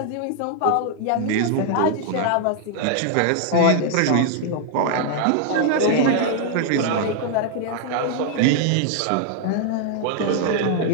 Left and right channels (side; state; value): both; different; correlation 0.00